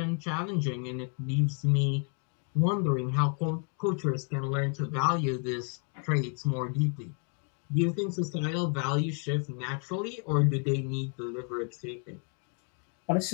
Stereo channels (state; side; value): quieter; right; 40.0 dB